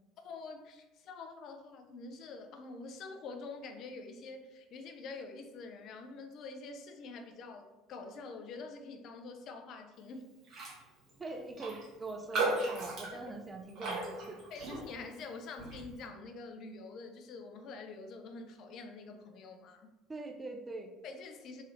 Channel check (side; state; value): both; normal; correlation 0.43